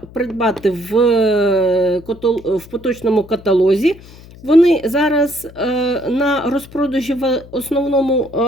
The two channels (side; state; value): left; noise; hum, 20 dB below the sound